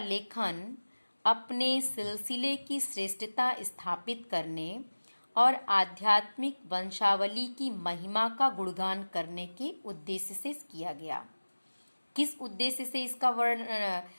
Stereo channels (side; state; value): both; inverted; correlation -1.00